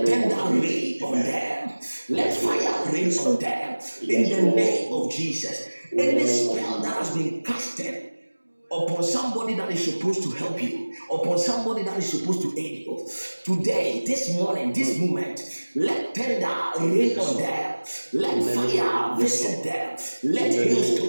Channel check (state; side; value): inverted; both; correlation -1.00